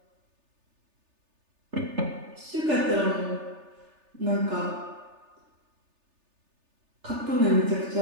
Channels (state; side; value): late; left; 3.3 ms